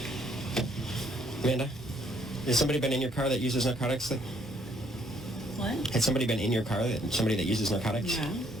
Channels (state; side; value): normal; both; correlation 0.67